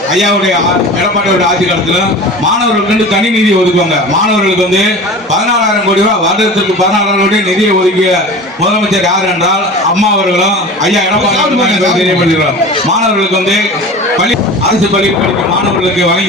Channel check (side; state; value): both; normal; correlation 0.36